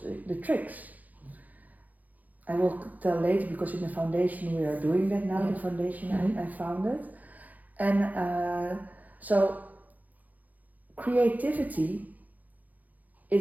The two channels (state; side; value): late; left; 0.080 ms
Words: the tricks. I will tell later, because in the foundation we are doing that now. The foundation I founded, and so creativity